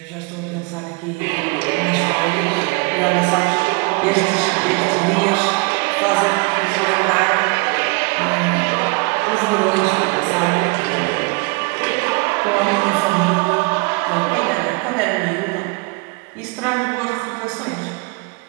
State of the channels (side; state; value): left; quieter; 27.8 dB